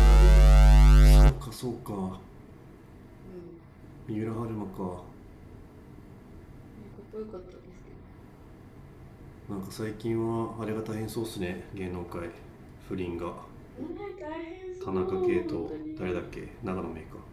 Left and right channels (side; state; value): both; identical; correlation 1.00